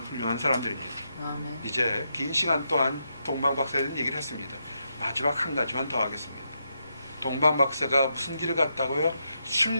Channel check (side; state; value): both; inverted; correlation -0.82